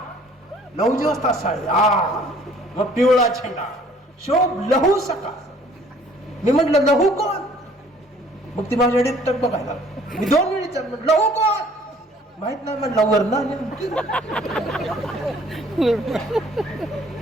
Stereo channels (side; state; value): both; normal; correlation 0.56